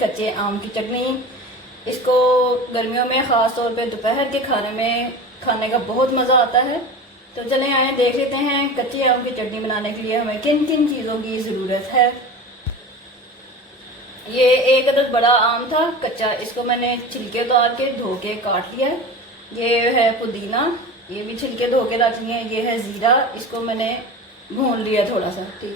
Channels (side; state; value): both; normal; correlation 0.32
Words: आम की चटनी। इसको गर्मियों में ख़ास तौर पे दोपहर के खाने में खाने का बहुत मज़ा आता है। तो चलें आए देख लेते हैं कच्चे आम की चटनी बनाने के लिए हमें किन किन चीज़ों की ज़रूरत है। ये एक अदद बड़ा आम था कच्चा, इसको मैंने छिलके उतार के धो के काट लिया है। ये है पुदीना, ये भी छिलके धो के रख लिए। ये है ज़ीरा, इसको मैंने भून लिया थोड़ा सा,